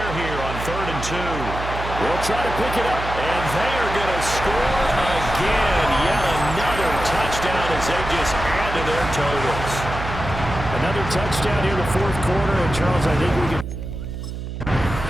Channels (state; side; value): noise; right; hum, 7 dB below the sound